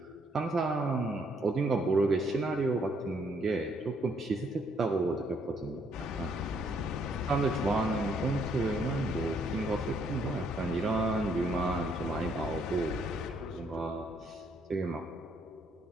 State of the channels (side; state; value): both; normal; correlation 0.69